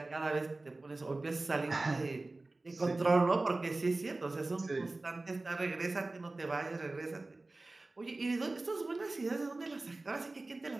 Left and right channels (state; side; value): quieter; left; 3.1 dB